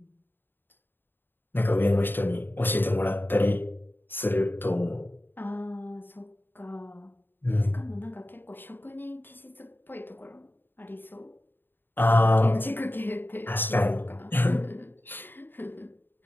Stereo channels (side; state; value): right; late; 0.096 ms